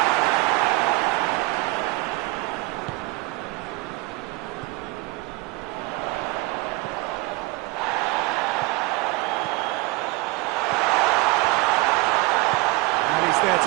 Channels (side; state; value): left; quieter; 22.0 dB